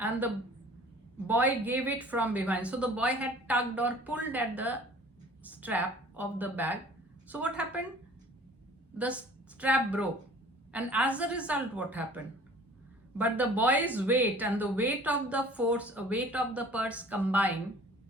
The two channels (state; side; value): normal; both; correlation 0.49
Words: the boy gave it from behind. So the boy had tugged or pulled at the strap of the bag. So what happened? The strap broke. And as a result, what happened? But the boy's weight and the weight of the purse combined